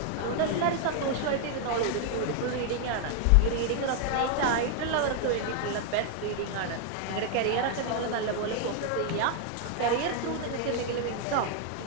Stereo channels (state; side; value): different; both; correlation 0.00